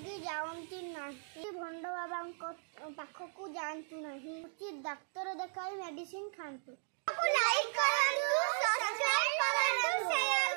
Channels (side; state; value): left; silent; digital silence